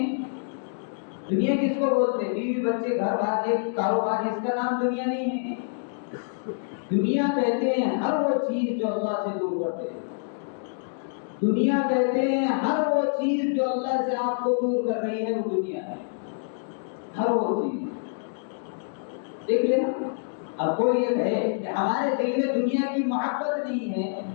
دنیا کس کو بولتے؟ بیوی بچے گھر بار ایک کاروبار، اس کا نام دنیا نہیں ہے۔ دنیا کہتے ہیں ہر وہ چیز جو اللہ سے دور کرتے ہیں، دنیا کہتے ہیں ہر وہ چیز جو اللہ سے آپ کو دور کر رہی ہے، وہ دنیا ہے، ہر وہ چیز۔ دیکھ لینا، اب کوئی یہ کہے کہ ہمارے دل میں دنیا کی محبت نہیں ہے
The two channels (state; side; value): silent; right; digital silence